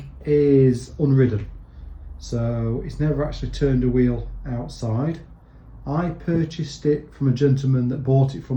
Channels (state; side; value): identical; both; correlation 1.00